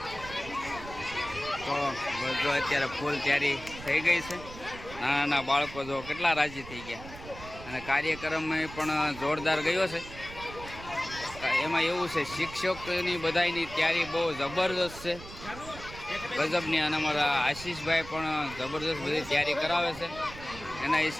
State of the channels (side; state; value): right; noise; rumble, 14 dB below the sound